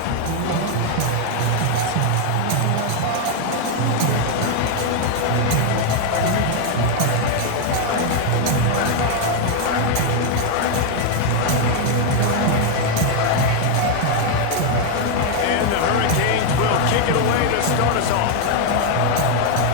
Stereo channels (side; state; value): both; different; correlation 0.00